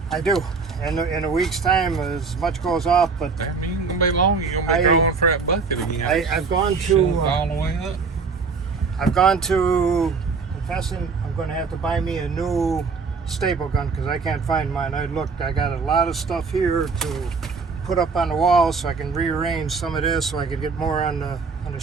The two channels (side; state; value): left; quieter; 4.8 dB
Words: I do. In a week's time, as much goes off, but That ain't gonna be long. You're gonna be drawing for that bucket again. I've gone Shove to all the way up. confessing I'm going to have to buy me a new staple gun because I can't find mine. I looked, I got a lot of stuff here to put up on the wall so I can rearrange some of this so I could get more on the